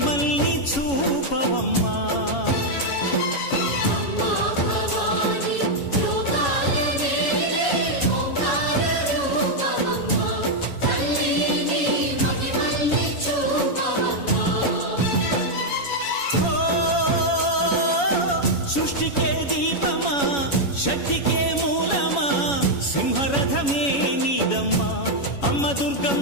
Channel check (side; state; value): right; late; 7.1 ms